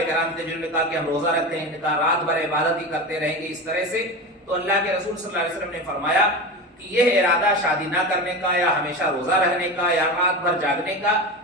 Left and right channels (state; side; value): normal; both; correlation 0.25